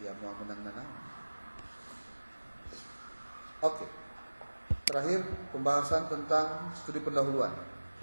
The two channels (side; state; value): both; inverted; correlation -1.00